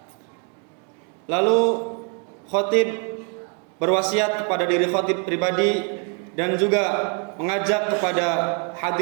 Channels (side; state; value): left; quieter; 39.2 dB